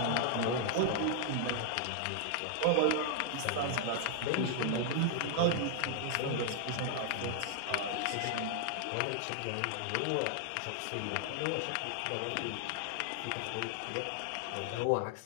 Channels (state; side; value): different; both; correlation 0.00